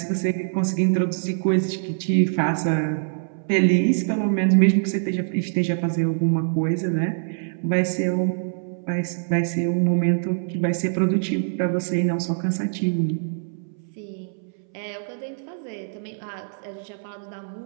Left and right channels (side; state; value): left; silent; 63 dB below the other